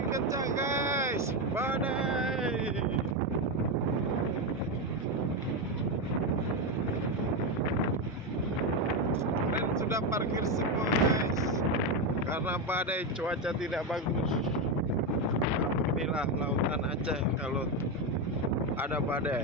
kencang guys, badai. Dan sudah parkir semua guys, karena badai, cuaca tidak bagus. Inilah lautan Aceh kalau ada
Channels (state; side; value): normal; both; correlation 0.10